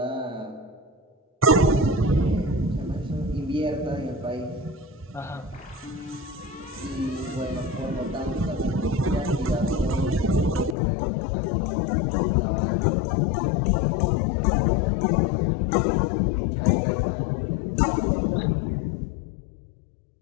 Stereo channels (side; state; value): right; drops out; at 10.8 s